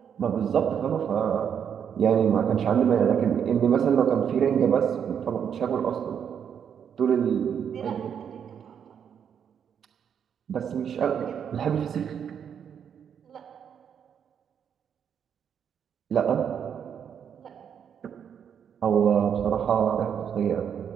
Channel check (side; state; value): left; quieter; 8.0 dB